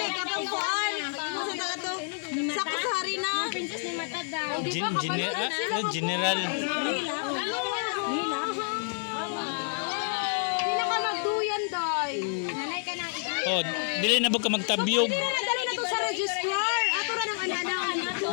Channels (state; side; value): silent; right; 56 dB below the other